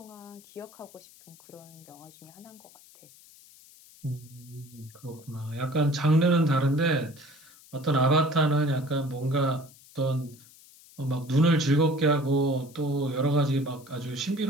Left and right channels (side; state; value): left; noise; hiss, 24 dB below the sound